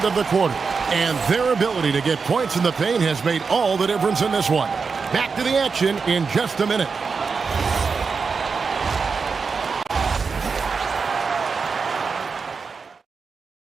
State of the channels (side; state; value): left; quieter; 5.1 dB